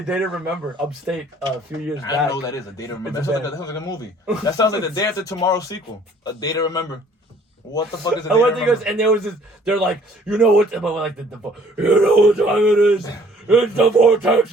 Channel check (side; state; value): both; normal; correlation 0.57